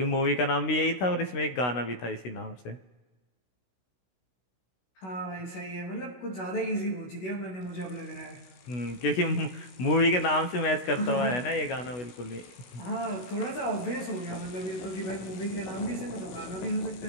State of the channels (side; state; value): right; late; 16 ms